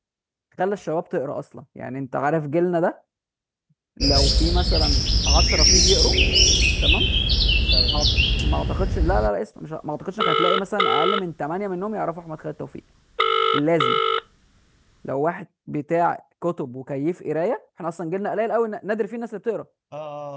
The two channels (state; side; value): identical; both; correlation 1.00